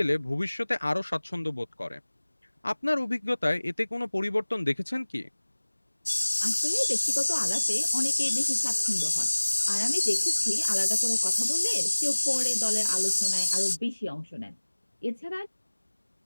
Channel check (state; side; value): inverted; both; correlation -1.00